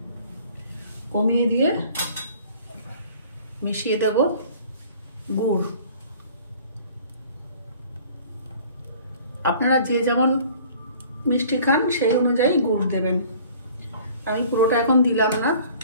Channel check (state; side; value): inverted; both; correlation -0.50